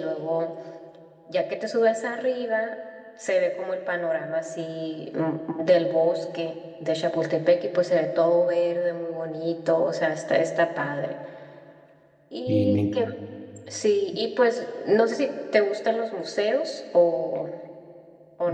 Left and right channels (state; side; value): identical; both; correlation 1.00